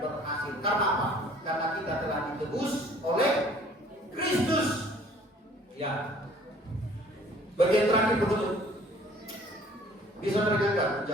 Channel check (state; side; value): normal; both; correlation 0.54